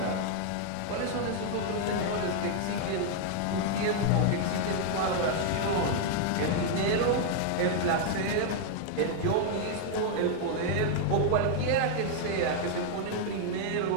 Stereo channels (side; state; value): both; different; correlation 0.00